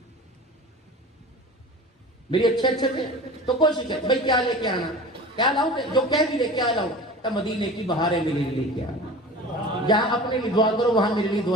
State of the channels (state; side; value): normal; both; correlation 0.37